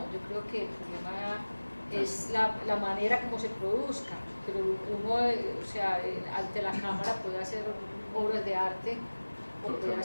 yo creo que el problema es la manera como se produzca, pero uno, o sea, ante la cámara puede hacer obras de arte o puede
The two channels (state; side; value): inverted; both; correlation -1.00